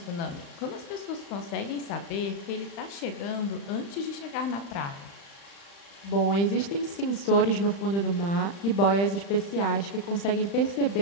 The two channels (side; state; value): right; late; 35 ms